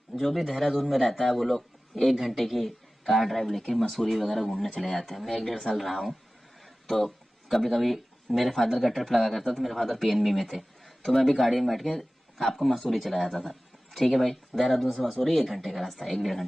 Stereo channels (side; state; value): both; normal; correlation 0.97